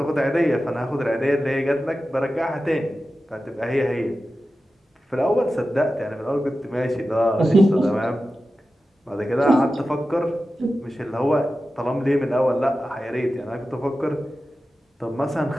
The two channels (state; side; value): normal; both; correlation 0.93